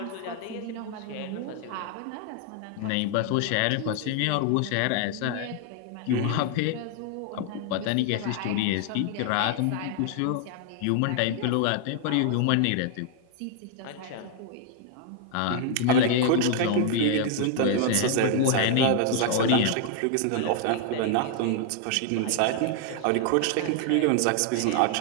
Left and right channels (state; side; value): different; both; correlation 0.00